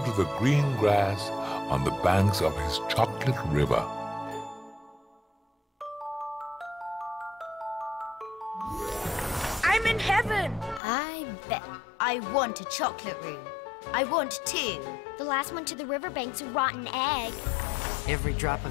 to the green grass on the banks of his chocolate river. I'm in heaven. I bet. I want a chocolate room. I want 2. The last one to the riverbank's a rotten egg. Every drop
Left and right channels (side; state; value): right; drops out; at 10.8 s